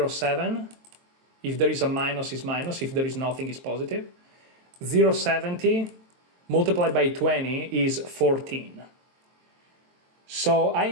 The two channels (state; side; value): late; left; 23 ms